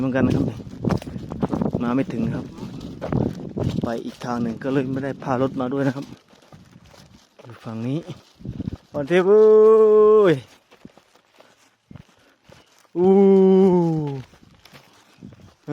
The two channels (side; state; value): both; identical; correlation 1.00